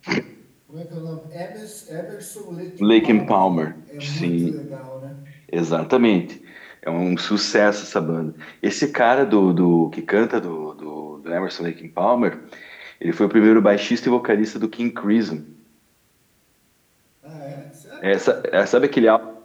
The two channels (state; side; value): identical; both; correlation 1.00